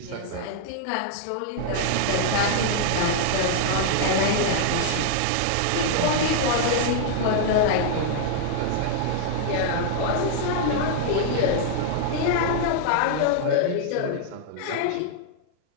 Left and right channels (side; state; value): both; different; correlation -0.01